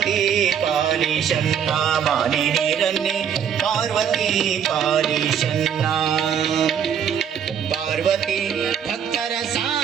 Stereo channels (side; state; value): left; quieter; 8.2 dB